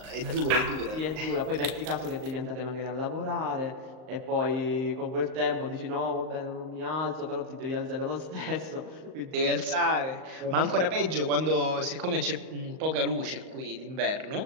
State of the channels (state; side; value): late; left; 38 ms